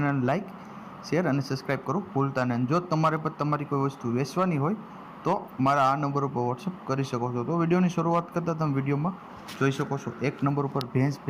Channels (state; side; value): identical; both; correlation 1.00